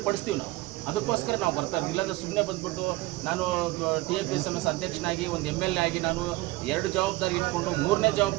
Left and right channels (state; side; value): quieter; left; 19.7 dB